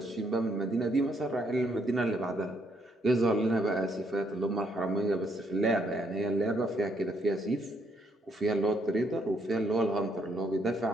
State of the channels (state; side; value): normal; both; correlation 0.73